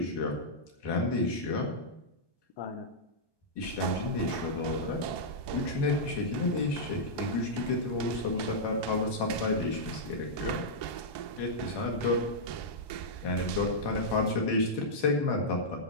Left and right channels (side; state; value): right; late; 1.2 ms